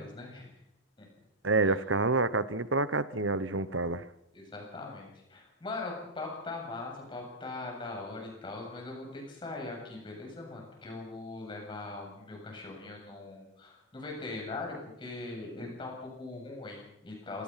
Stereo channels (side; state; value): both; normal; correlation -0.08